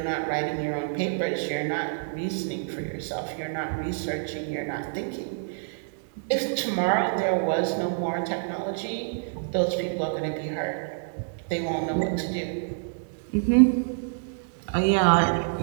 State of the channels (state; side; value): silent; left; digital silence